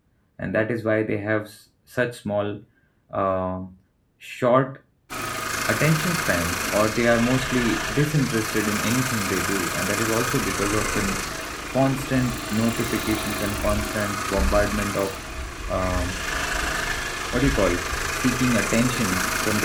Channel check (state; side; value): identical; both; correlation 1.00